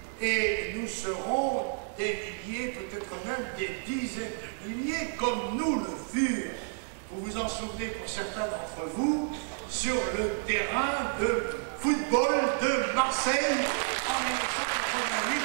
et nous serons des milliers, peut-être même des dizaines de milliers, comme nous le fûmes. Vous vous en souvenez pour certains d'entre vous, sur le terrain de football de Marseille en 1988.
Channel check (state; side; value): silent; left; 58 dB below the other